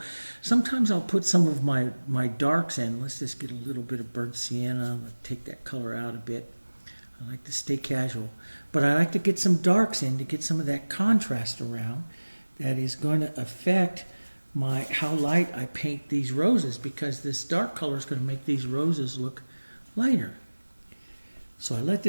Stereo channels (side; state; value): both; inverted; correlation -1.00